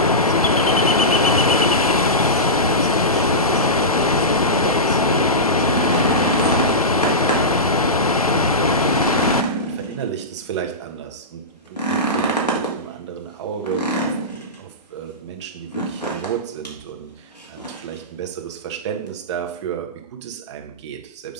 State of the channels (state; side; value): normal; both; correlation -0.16